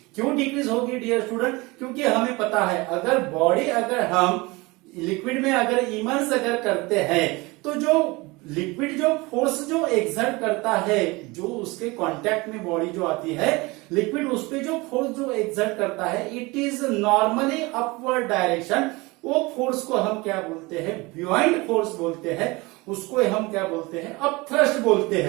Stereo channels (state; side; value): quieter; left; 23.8 dB